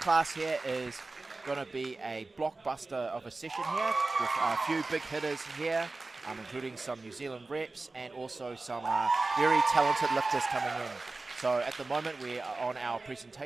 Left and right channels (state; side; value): quieter; left; 3.4 dB